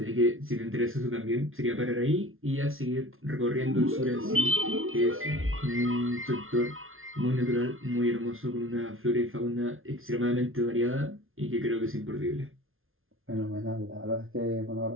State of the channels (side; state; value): left; late; 0.60 ms